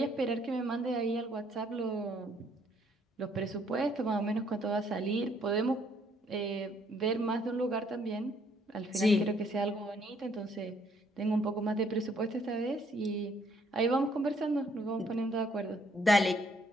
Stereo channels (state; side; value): normal; both; correlation 0.66